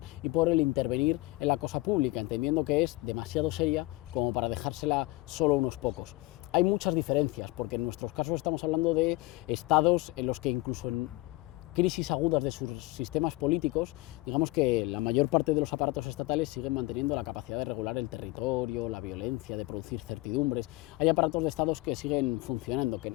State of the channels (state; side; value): quieter; right; 20.7 dB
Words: y por el intervenir en la cosa pública, entendiendo que es demasiado seria como para dejársela solo unos pocos. Hay muchas diferencias, porque en nuestros casos estamos hablando de estados en los que incluso en crisis agudas de sus sistemas políticos, digamos que la mayor parte de los aparatos estatales siguen manteniendo la capacidad de regular el territorio, la violencia, de producir certidumbres. Hay aparatos de estados que siguen funcionando, que